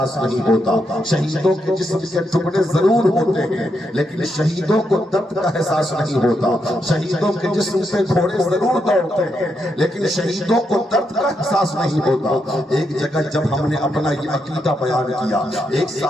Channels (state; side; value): normal; both; correlation 0.81